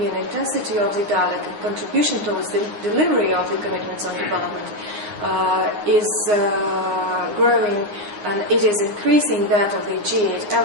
intensity of the dialogue and contribution towards the delivery of the commitments on development is growing, and it is increasing that of the G8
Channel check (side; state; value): left; late; 9.6 ms